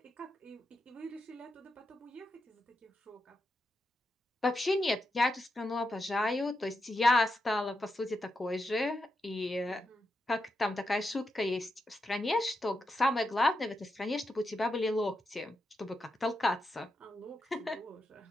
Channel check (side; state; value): both; normal; correlation 0.86